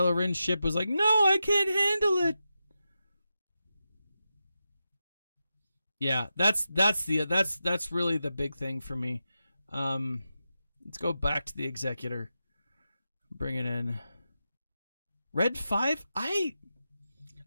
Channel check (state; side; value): inverted; both; correlation -0.90